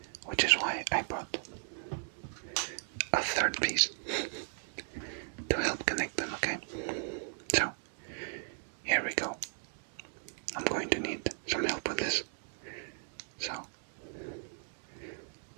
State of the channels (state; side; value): silent; left; 54 dB below the other